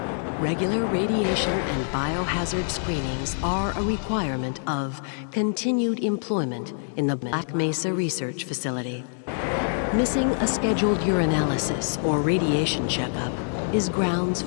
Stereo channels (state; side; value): silent; right; digital silence